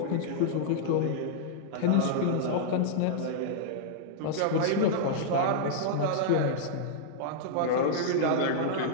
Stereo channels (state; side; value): different; both; correlation -0.01